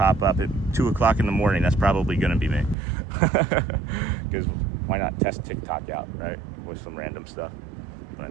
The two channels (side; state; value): left; drops out; at 2.8 s